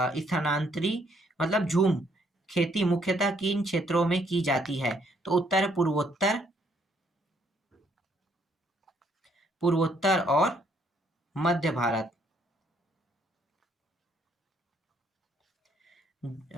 मतलब झूम खेती मुख्यतः किन क्षेत्रों में की जाती है? तो उत्तर पूर्वोत्तर और मध्य भारत।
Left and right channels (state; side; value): normal; both; correlation 0.68